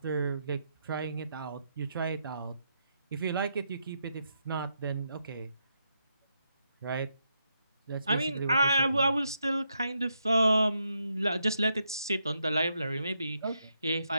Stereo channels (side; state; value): both; inverted; correlation -0.81